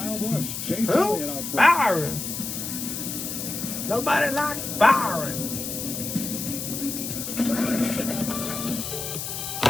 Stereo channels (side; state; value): left; noise; hiss, 5 dB below the sound